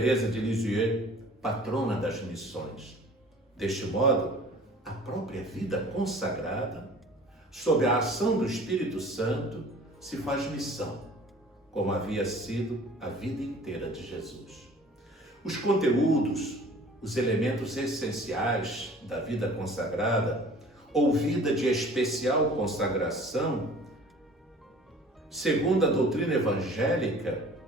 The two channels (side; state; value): both; normal; correlation 0.47